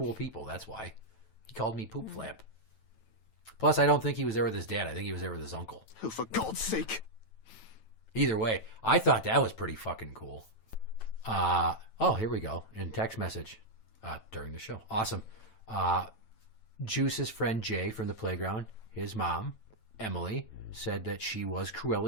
people, that's why. He called me poop flap. Plus, I don't think he was there with his dad. I think he was there with his uncle. Oh, for God's sake. Either way, I thought that was pretty fucking cool. Oh, here we go. In text message during the show. Awesome. Juice's friend Jay from the playground, his mom, Emily, said that she was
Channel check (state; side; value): late; right; 9.1 ms